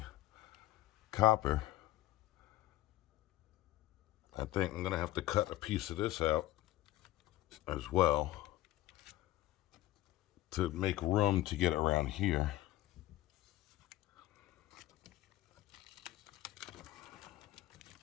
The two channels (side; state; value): right; quieter; 15.2 dB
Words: copper. I think I'm gonna have to cut a piece of this out as well to make room to get around here.